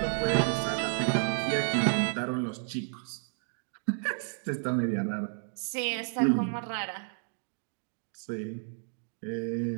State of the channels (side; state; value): left; silent; 57 dB below the other